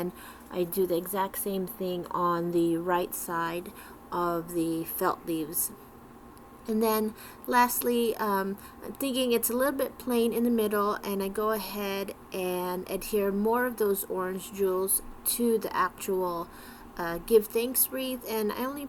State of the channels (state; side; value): identical; both; correlation 1.00